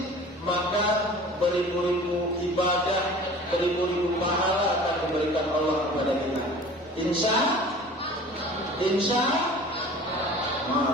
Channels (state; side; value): normal; both; correlation 0.43